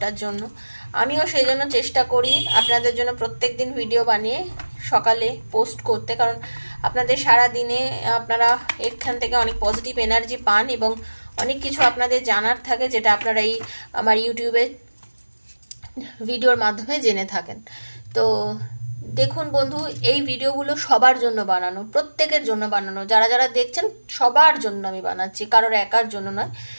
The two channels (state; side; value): inverted; both; correlation -1.00